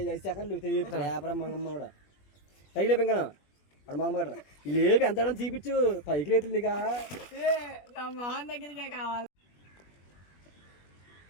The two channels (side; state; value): right; late; 21 ms